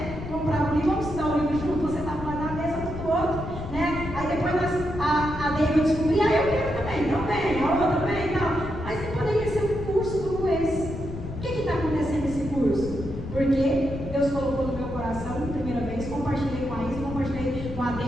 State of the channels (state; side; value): noise; left; rumble, 9 dB below the sound